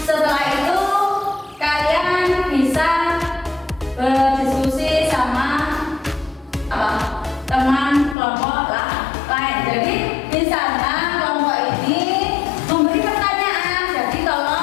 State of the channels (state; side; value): drops out; right; at 8.2 s